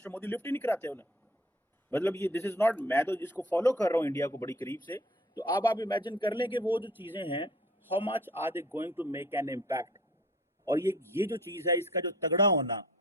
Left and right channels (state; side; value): normal; both; correlation 0.51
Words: मोदी लिफ्ट ही नहीं कराते उन्हें। मतलब ये दिस इज नॉट, मैं तो इसको फॉलो कर रहा हूँ इंडिया को बड़ी करीब से, तो अब आप इमेजिन कर लें कि वो जो चीजें हैं, how much are they going to make an impact. और ये जो चीज है, इसका जो तगड़ा होना,